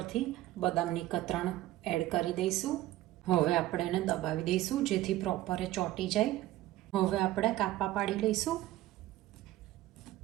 બદામની કતરણ એડ કરી દઈશું. હવે આપણે એને દબાવી દઈશું જેથી પ્રોપર એ ચોંટી જાય. હવે આપણે કાપા પાડી લઈશું.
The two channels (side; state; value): left; quieter; 15.5 dB